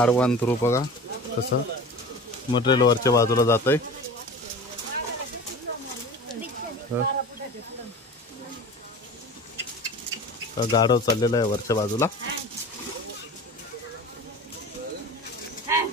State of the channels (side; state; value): both; normal; correlation 0.36